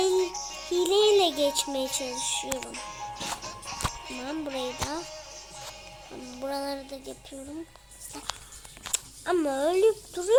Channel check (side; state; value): both; identical; correlation 1.00